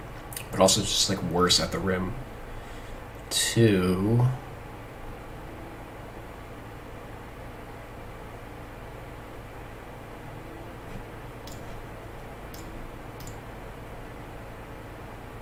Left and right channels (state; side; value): identical; both; correlation 1.00